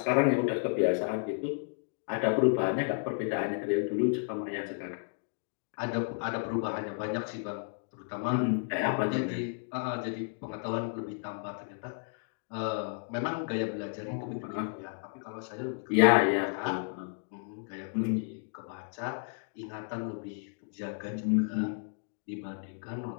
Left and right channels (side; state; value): right; silent; digital silence